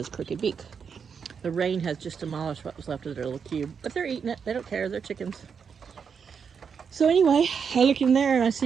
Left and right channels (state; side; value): quieter; left; 6.5 dB